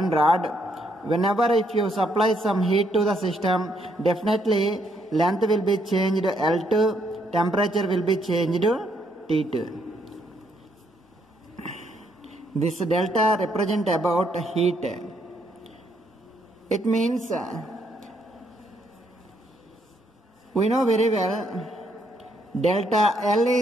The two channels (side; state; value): both; normal; correlation 0.72